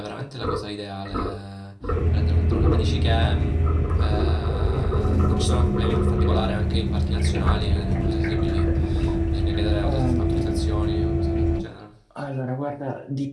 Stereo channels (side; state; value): both; identical; correlation 1.00